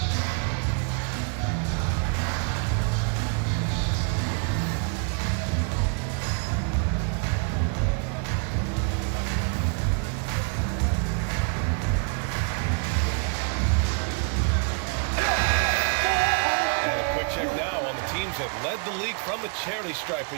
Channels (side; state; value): left; quieter; 38.8 dB